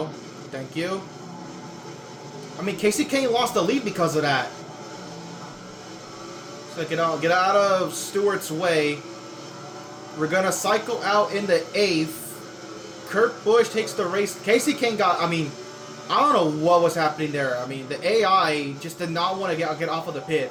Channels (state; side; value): identical; both; correlation 1.00